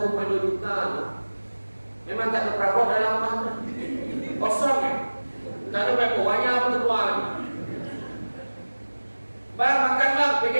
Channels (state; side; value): inverted; both; correlation -1.00